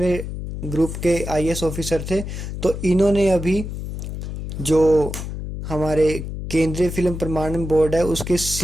ग्रुप के आईएएस ऑफिसर थे। तो इन्होंने अभी जो हमारे केंद्रीय फिल्म प्रमाणन बोर्ड है उसके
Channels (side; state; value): left; noise; hum, 7 dB below the sound